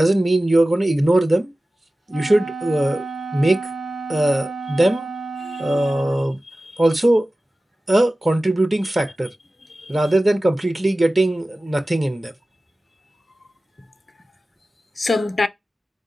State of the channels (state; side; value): normal; both; correlation 0.96